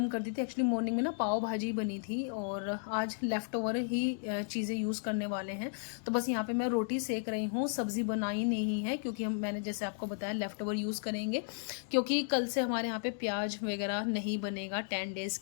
कर दी थी। एक्चुअली मॉर्निंग में ना पाव भाजी बनी थी, और आज लेफ़्ट ओवर ही चीज़ें यूज़ करने वाले हैं। तो बस यहाँ पे मैं रोटी सेक रही हूँ, सब्ज़ी बनाई नहीं है, क्योंकि मैंने जैसे आपको बताया लेफ़्ट ओवर यूज़ करेंगे, क्योंकि कल से हमारे यहाँ पे प्याज वगैरह नहीं बनेगा 10 डेज़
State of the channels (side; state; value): right; silent; digital silence